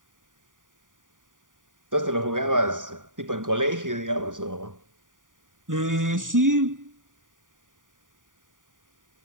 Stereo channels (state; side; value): late; left; 0.88 ms